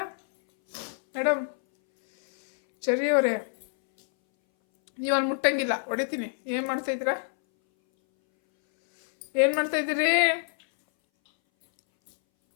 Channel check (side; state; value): right; silent; 61 dB below the other